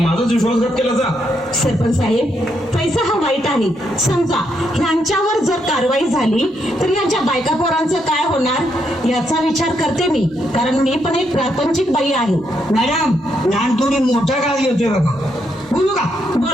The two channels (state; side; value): normal; both; correlation 0.78